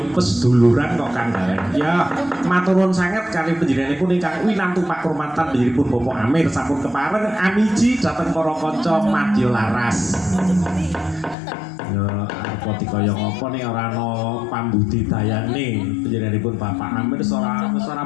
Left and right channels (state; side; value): drops out; right; at 11.4 s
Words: peseduluran kok Kang Galen. Ya matur nuwun sanget kali panjenenganipun ingkang winantu pakurmatan panjenenganipun Bapak Amir sampun kepareng amiji dhateng para kanca madya laras. Ya apa dikaya ngapa ning ora ana pambudidayane panjenenganipun Bapak Amir ora